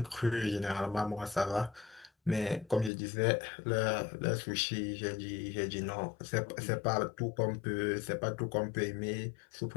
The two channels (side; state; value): right; drops out; at 2.9 s